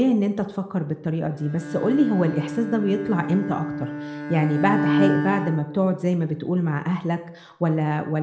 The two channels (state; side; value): identical; both; correlation 1.00